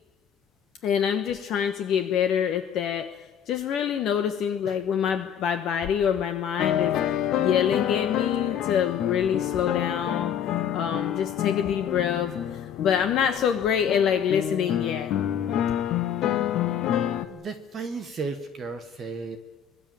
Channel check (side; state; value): right; quieter; 8.4 dB